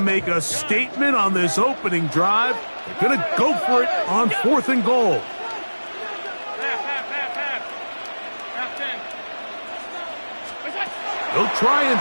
a statement on this opening drive. They're going to go for it on 4th and goal. He'll try and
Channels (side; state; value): both; inverted; correlation -1.00